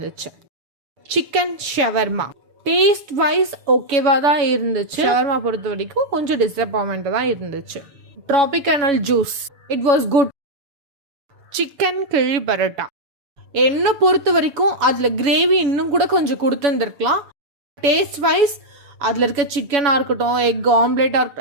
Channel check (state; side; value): late; left; 6.8 ms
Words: சிக்கன் ஷவர்மா டேஸ்ட் வைஸ் ஓகேவா தான் இருந்துச்சு. ஷவர்மா பொறுத்த வரைக்கும் கொஞ்சம் டிசப்பாயின்மெண்ட் தான் இருந்துச்சு. Tropical juice it was good. Chicken கிழி பரோட்டா என்ன பொறுத்த வரைக்கும் அதுல கிரேவி இன்னும் கூட கொஞ்சம் கொடுத்துருந்துருக்கலாம். டேஸ்ட் வைஸ் அதில் இருக்க சிக்கனாக இருக்கட்டும், எக் ஆம்லேட்டாக